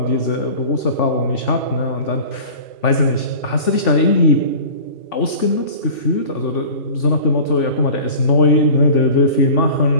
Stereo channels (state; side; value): late; right; 3.5 ms